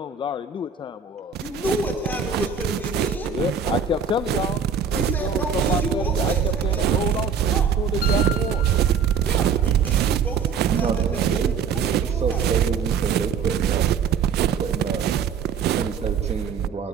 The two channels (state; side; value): quieter; left; 6.3 dB